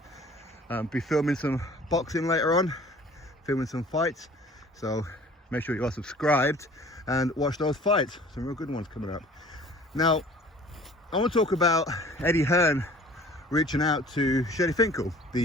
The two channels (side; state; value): both; normal; correlation 0.49